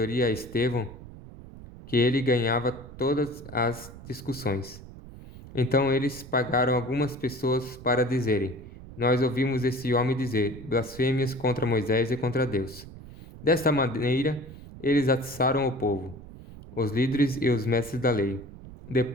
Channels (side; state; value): right; noise; rumble, 16 dB below the sound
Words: a Estevão que ele ganhava todas as discussões. Então eles pagaram algumas pessoas para dizerem: Nós ouvimos esse homem dizer blasfêmias contra Moisés e contra Deus. Desta maneira, eles atiçaram o povo, os líderes e os mestres da lei.